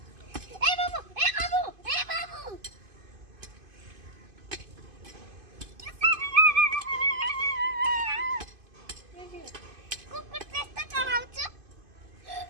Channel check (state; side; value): late; left; 2.5 ms